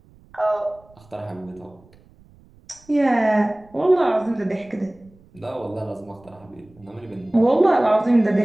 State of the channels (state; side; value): noise; right; rumble, 28 dB below the sound